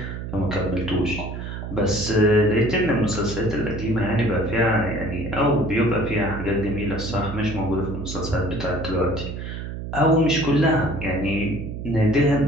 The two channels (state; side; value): noise; right; hum, 7 dB below the sound